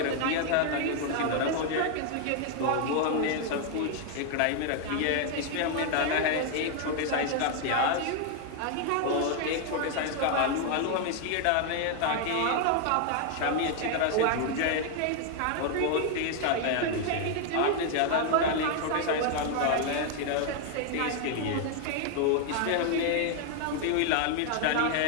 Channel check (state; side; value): different; both; correlation 0.00